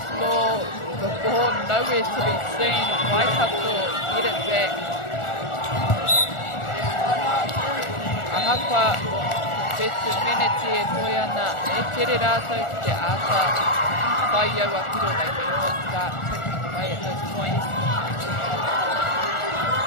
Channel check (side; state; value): right; late; 1.4 ms